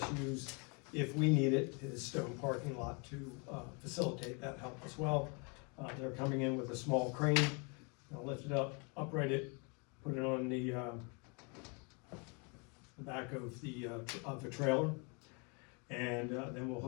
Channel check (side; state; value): right; quieter; 33.4 dB